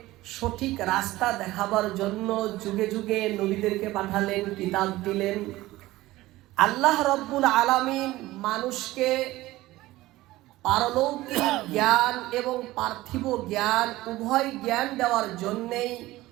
সঠিক রাস্তা দেখাবার জন্য যুগে যুগে নবীদেরকে পাঠালেন, কিতাব দিলেন। আল্লাহ রাব্বুল আলামিন মানুষকে পারলৌকিক জ্ঞান এবং পার্থিব জ্ঞান উভয় জ্ঞান দেওয়ার জন্যেই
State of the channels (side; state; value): left; quieter; 17.6 dB